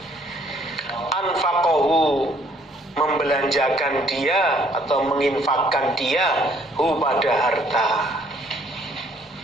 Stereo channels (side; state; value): both; normal; correlation 0.62